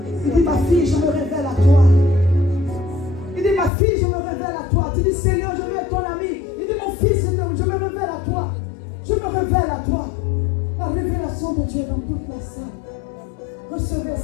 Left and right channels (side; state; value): right; drops out; at 3.7 s